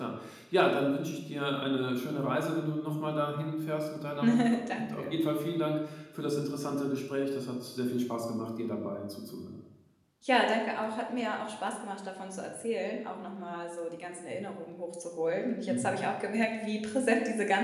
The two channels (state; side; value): identical; both; correlation 1.00